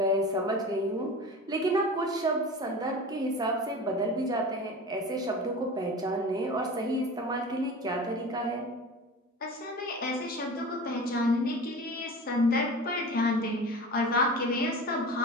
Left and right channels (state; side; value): normal; both; correlation 0.33